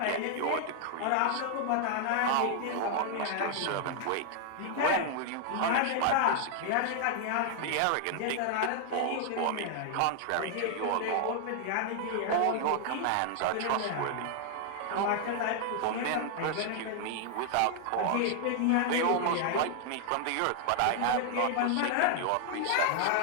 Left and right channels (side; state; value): both; different; correlation 0.00